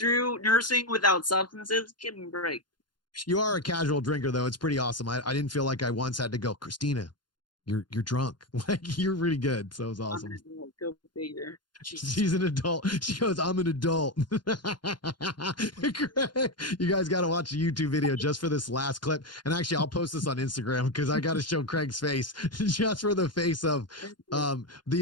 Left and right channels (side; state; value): right; late; 0.71 ms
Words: nursing without substances. Give me a break. You are a casual drinker, though. It's pretty awesome. I didn't feel like I once had to go, Christina, you're drunk. Like, you're really good. So it was awesome. Go figure. She's an adult. She goes, I'm an adult. You guys got to watch the YouTube video just for this last clip. And actually, I'll post this on Instagram because I got to show Craig's face just for the face of